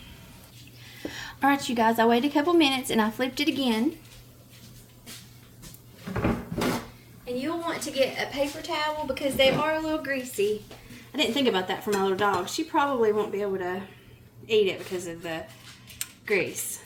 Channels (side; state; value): both; identical; correlation 1.00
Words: Alright, you guys, I waited a couple minutes and I flipped it again. And you'll want to get a paper towel because they are a little greasy. I didn't think about that for my little dog. She probably won't be able to eat it because of the grease.